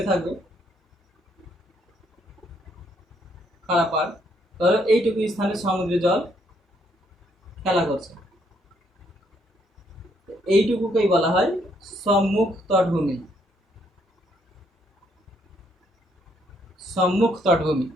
থাকবে, খাড়া পাড়। ধরো এইটুকু স্থানে সমুদ্রের জল খেলা করছে, এইটুকুকেই বলা হয় সম্মুখ তটভূমি। সম্মুখ তটভূমি,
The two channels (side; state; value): both; normal; correlation 0.71